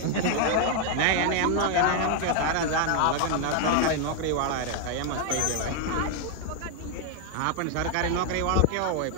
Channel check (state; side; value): different; both; correlation 0.00